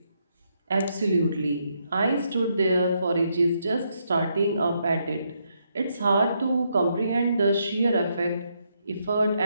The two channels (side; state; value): both; inverted; correlation -0.78